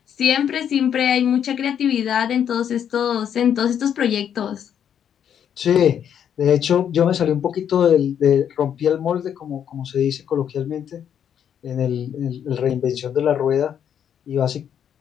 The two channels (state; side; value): quieter; right; 8.9 dB